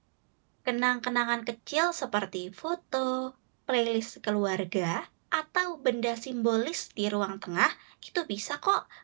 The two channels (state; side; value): silent; left; digital silence